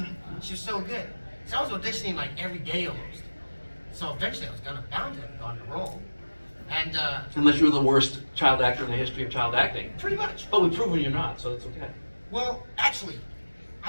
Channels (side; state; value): both; inverted; correlation -1.00